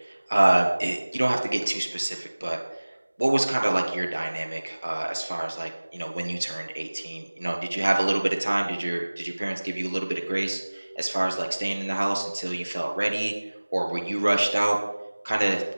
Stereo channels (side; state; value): both; inverted; correlation -1.00